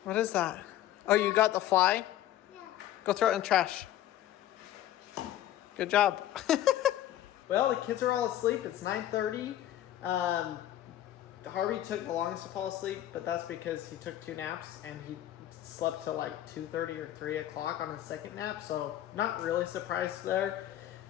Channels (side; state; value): right; quieter; 12.9 dB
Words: What is that? Oh, you got the fly? Yeah. Go throw it in the trash. Good job. Well, the kids are all asleep. It's 9:30. Harvey took the longest to fall asleep, but that's because he took 2 naps and he slept till like 2:30 or 3 o'clock on his second nap. So not really surprised there